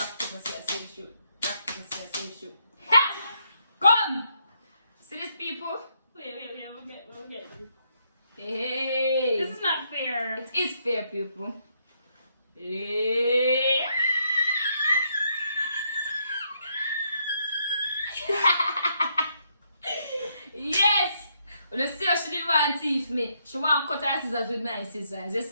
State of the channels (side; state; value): both; inverted; correlation -0.75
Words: paper, scissors, say shoot. Rock, paper, scissors, say shoot. Ha! Come! See these people? Wait, we'll get this. Hey! This is not fair. It is fair, people. Hey. Yes! Well, let's see how she didn't want to teeth me. She want to cut her scissors with my scissors. You